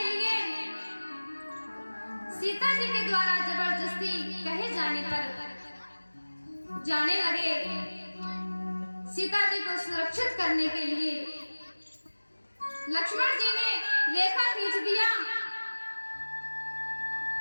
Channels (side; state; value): both; inverted; correlation -1.00